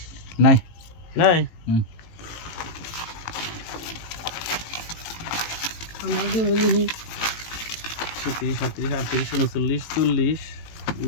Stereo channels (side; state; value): right; late; 18 ms